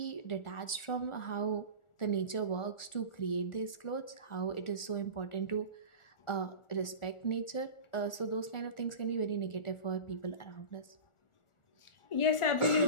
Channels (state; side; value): late; right; 1.4 ms